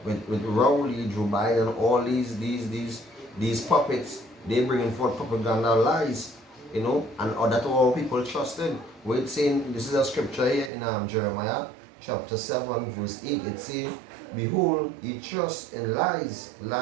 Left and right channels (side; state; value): left; drops out; at 10.7 s